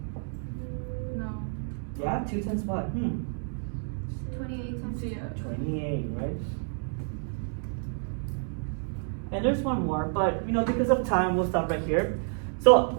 No. Yeah, 2 times what? 28 times Yeah. 28, right? And there's one more, but because of time, we'll stop right here. So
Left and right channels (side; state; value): left; silent; 56 dB below the other